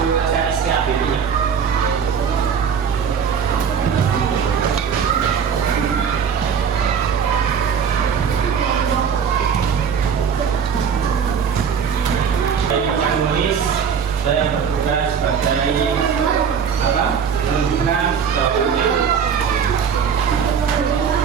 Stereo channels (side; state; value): left; quieter; 7.1 dB